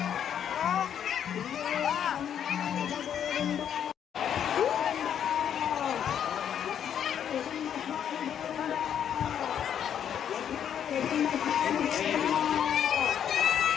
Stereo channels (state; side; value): quieter; right; 9.1 dB